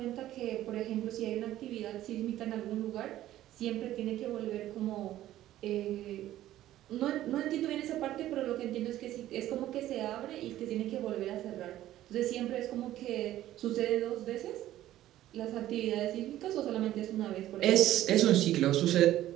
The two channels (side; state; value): left; quieter; 13.7 dB